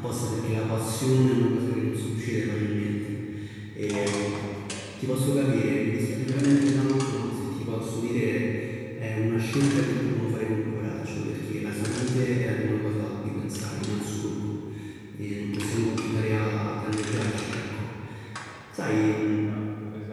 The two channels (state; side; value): identical; both; correlation 1.00